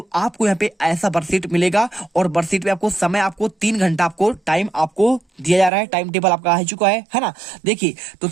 आपको यहाँ पे ऐसा वर्कशीट मिलेगा और वर्कशीट में आपको समय आपको 3 घंटा आपको टाइम आपको दिया जा रहा है। टाइम टेबल आपका आ चुका है ना। देखिए तो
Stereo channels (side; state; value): left; drops out; at 5.7 s